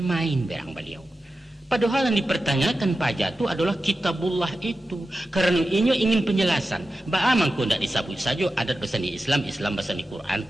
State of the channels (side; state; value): both; normal; correlation 0.92